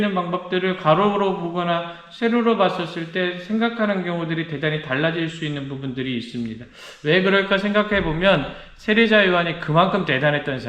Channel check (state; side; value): identical; both; correlation 1.00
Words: 방법들을 가로로 보거나 세로로 봤었을 때 생각하는 경우들이 대단히 달라질 수 있는 부분들이 있습니다. 왜 그럴까 생각해 보면 세례자 요한이 그만큼 대단했던